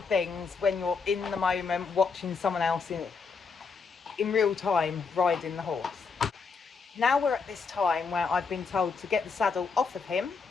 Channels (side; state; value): right; quieter; 5.1 dB